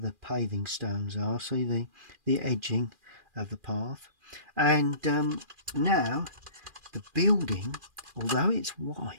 paving stones are. See the edging of the path. And now the building, although it's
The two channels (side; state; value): left; late; 2.4 ms